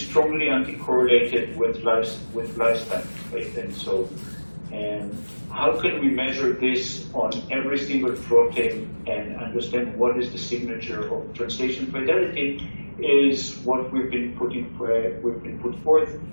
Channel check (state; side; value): inverted; both; correlation -1.00